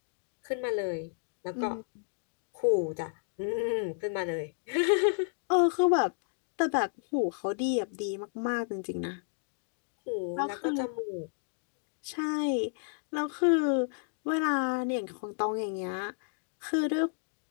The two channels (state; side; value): silent; right; digital silence